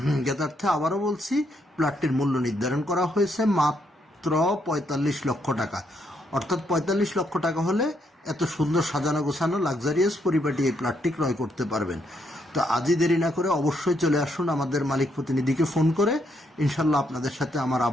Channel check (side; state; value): both; normal; correlation 0.75